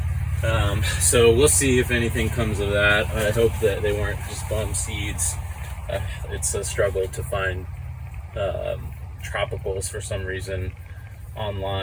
So we'll see if anything comes of that. I hope that they weren't just bum seeds. It's a struggle to find tropicals for some reason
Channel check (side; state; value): both; identical; correlation 1.00